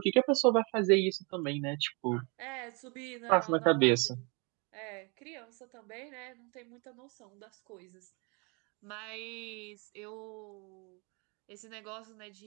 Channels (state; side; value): quieter; left; 31.3 dB